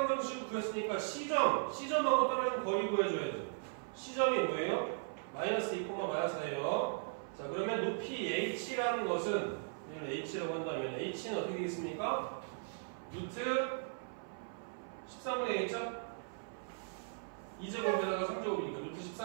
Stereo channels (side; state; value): left; silent; 53 dB below the other